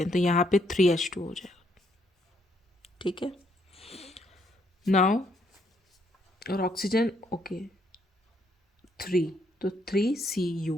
हैं, तो यहाँ पे 3H2 हो जाएगा, ठीक है। नाउ और ऑक्सीजन ओके 3, तो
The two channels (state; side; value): normal; both; correlation 0.72